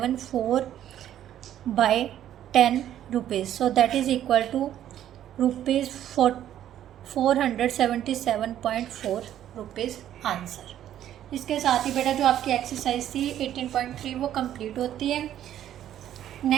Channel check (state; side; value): quieter; left; 11.3 dB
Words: rupees. So that is equal to rupees 477.4 rupees answer. इसके साथ ही बेटा जो आपकी एक्सरसाइज थी 18.3 वो कंप्लीट होती है।